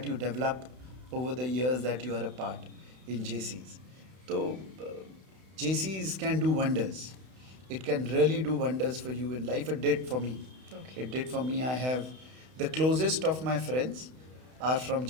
you develop over the years that you are a part in JCs. So, JCs can do wonders. It can really do wonders for you in life. It did for me. Okay. It did for me. I have the closest of my friends are from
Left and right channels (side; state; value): left; late; 31 ms